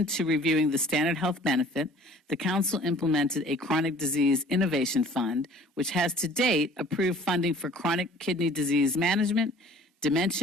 to reviewing the standard health benefit, the Council implemented a chronic disease innovation fund, which has to date approved funding for chronic kidney disease management,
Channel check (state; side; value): normal; both; correlation 0.50